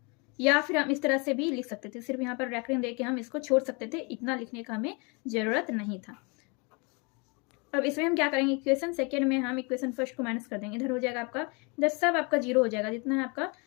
या फिर हम इस तरह से भी लिख सकते थे, सिर्फ यहाँ पर रेकरिंग देके हम इसको छोड़ सकते थे, इतना लिखने का हमें जरूरत नहीं था। अब इसमें हम क्या करेंगे, इक्वेशन सेकेंड में हम इक्वेशन फर्स्ट को माइनस कर देंगे। इधर हो जाएगा आपका, इधर सब आपका जीरो हो जाएगा, जितना है आपका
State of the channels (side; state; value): right; quieter; 31.0 dB